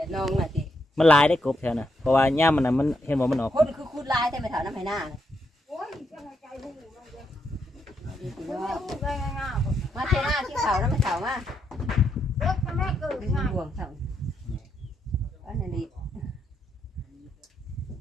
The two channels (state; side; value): normal; both; correlation 0.79